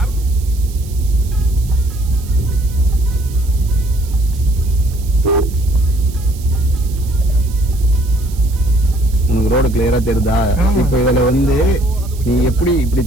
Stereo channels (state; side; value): noise; right; hiss, 19 dB below the sound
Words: உனக்கு ரோடு கிளியரா தெரியுதா? இப்போ இதுல வந்து நீ எப்படி இப்படி